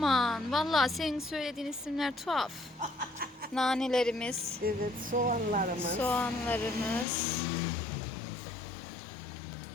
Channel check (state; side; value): drops out; right; at 7.1 s